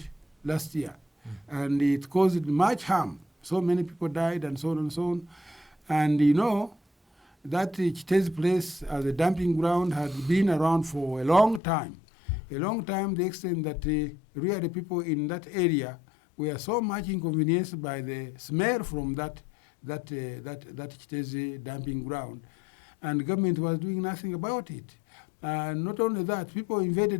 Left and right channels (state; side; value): drops out; right; at 11.6 s